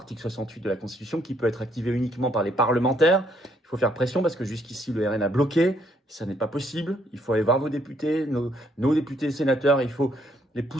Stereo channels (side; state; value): both; normal; correlation 0.69